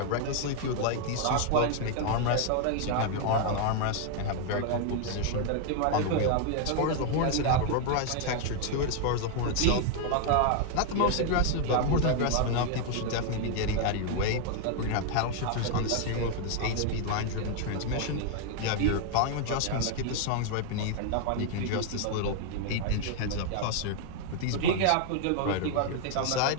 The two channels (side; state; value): both; different; correlation 0.00